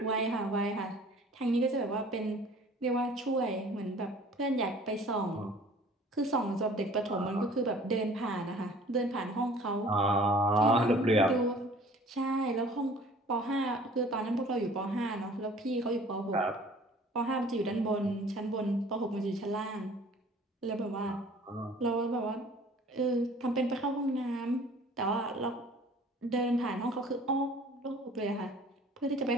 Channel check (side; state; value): both; normal; correlation 0.50